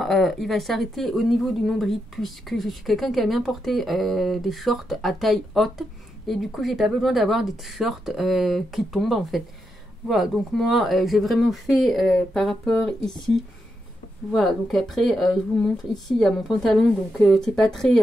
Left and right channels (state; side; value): normal; both; correlation 0.84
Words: il va s'arrêter au niveau du nombril, puisque je suis quelqu'un qui a bien porté des shorts à taille haute. Et du coup, j'ai pas besoin d'avoir des t-shirts qui tombent, en fait. Voilà, donc moi j'ai vraiment fait par rapport ici. Voilà, donc après je vous montre ici, il y a mon pantalon, donc c'est pas très...